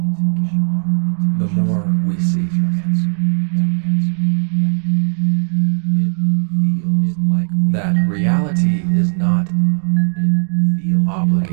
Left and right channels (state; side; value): silent; left; digital silence